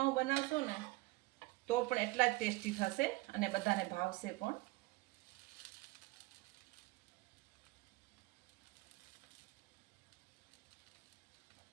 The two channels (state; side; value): quieter; left; 21.6 dB